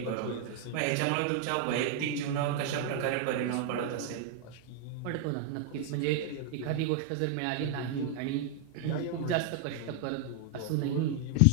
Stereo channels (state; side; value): different; both; correlation 0.00